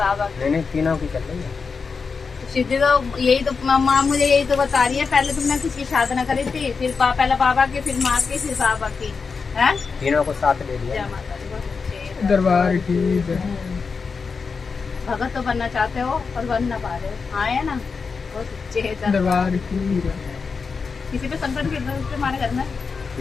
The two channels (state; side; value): quieter; right; 5.1 dB